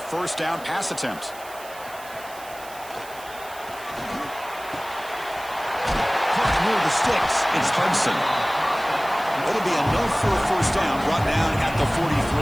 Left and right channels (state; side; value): noise; right; hiss, 18 dB below the sound